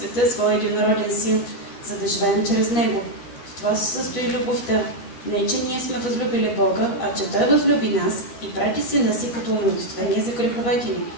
своя единороден син, за да живеем чрез него. В това се състои любовта. Не, че ние сме възлюбили Бога, а че Той възлюби нас и прати сина си като умилостивение за греховете ни.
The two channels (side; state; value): right; late; 13 ms